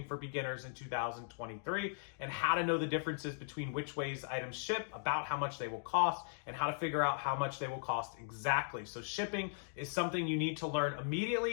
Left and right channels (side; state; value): right; silent; digital silence